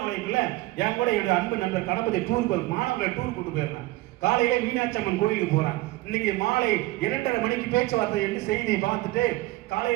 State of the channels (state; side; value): quieter; left; 19.2 dB